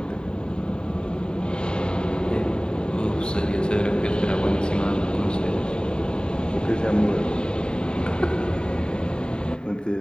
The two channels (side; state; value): right; late; 0.048 ms